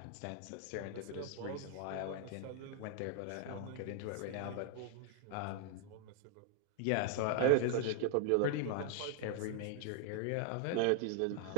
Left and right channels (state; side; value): different; both; correlation 0.00